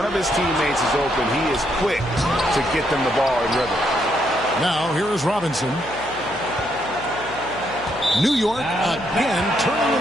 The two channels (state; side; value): noise; left; hum, 17 dB below the sound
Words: of his teammates is open, he is quick to get them the ball in rhythm. Now here is Robinson. New York again turning it